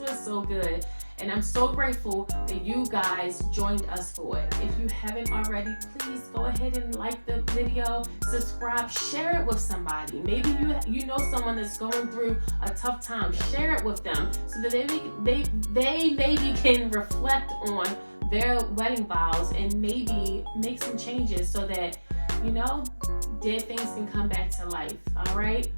so good. And I'm so grateful that you guys joined us for it. If you haven't already, please go ahead and like the video, subscribe, share it with somebody. Maybe you know someone that's going through a tough time. Share it with them so that they maybe can reflect on their wedding vows and maybe make some changes so that, dead things can come back to life. All right?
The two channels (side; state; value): both; inverted; correlation -1.00